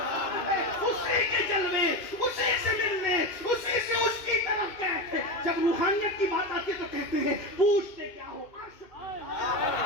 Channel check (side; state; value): right; late; 2.6 ms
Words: اسی کے جلوے اسی سے ملنے، اسی سے اس کی طرف گئے تھے۔ جب روحانیت کی بات آتی ہے تو کہتے ہیں پوچھتے کیا ہو عرش پر،